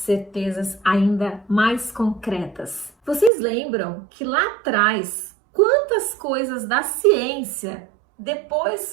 ainda mais concretas. Vocês lembram que lá atrás, quantas coisas da ciência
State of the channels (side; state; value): left; drops out; at 3.3 s